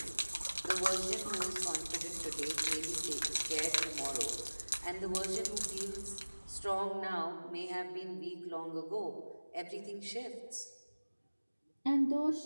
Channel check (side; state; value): both; inverted; correlation -1.00